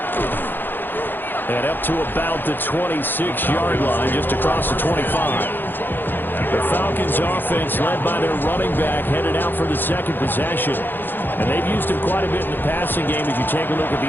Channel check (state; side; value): late; right; 0.095 ms